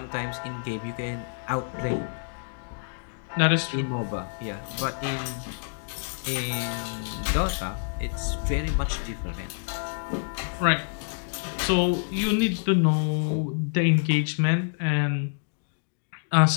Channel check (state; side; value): silent; right; digital silence